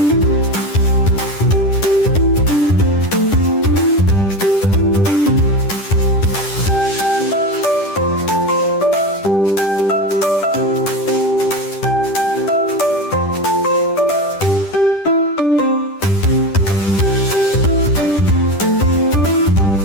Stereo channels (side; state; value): right; late; 10 ms